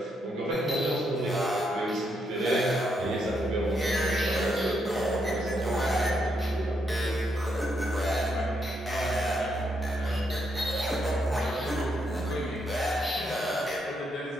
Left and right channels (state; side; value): normal; both; correlation 0.78